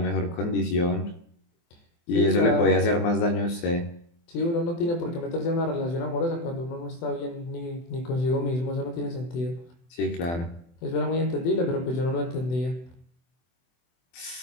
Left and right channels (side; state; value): right; late; 24 ms